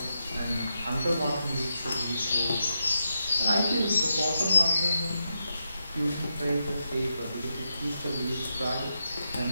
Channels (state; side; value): inverted; both; correlation -0.85